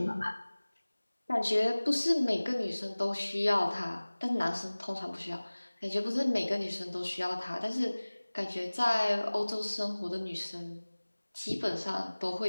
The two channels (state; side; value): inverted; both; correlation -1.00